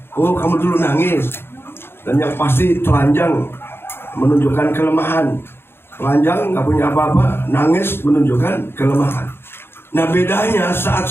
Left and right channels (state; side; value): late; right; 0.11 ms